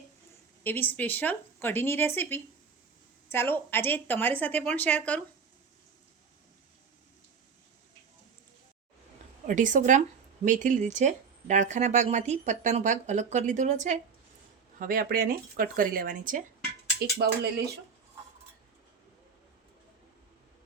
એવી સ્પેશિયલ કઢીની રેસીપી ચાલો આજે તમારી સાથે પણ શેર કરું। 250 ગ્રામ મેથી લીધી છે। ડાળખાના ભાગમાંથી પત્તાનો ભાગ અલગ કરી લીધેલો છે। હવે આપણે આને કટ કરી લેવાની છે। એક બાઉલ લઈ લઈશું।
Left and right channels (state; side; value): quieter; left; 5.9 dB